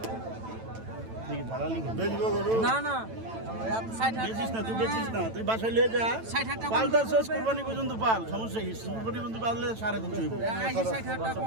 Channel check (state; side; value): late; left; 9.0 ms